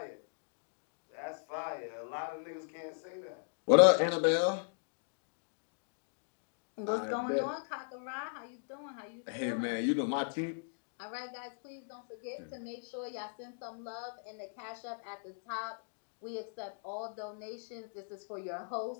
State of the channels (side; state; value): right; silent; digital silence